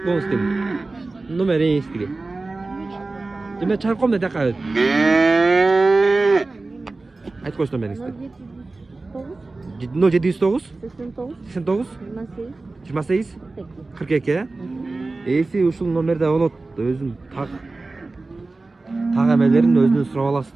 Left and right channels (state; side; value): quieter; left; 3.4 dB